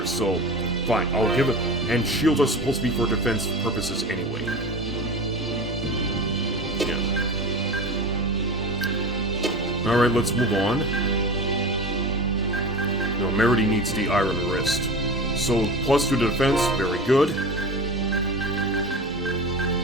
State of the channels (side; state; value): both; normal; correlation 0.30